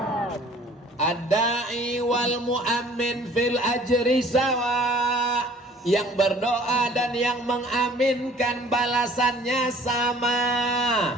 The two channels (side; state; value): both; normal; correlation 0.53